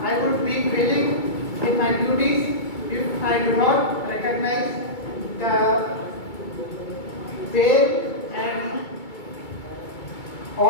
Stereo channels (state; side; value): late; right; 2.3 ms